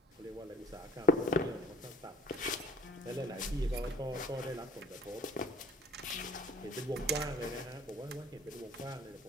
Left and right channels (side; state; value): both; normal; correlation 0.54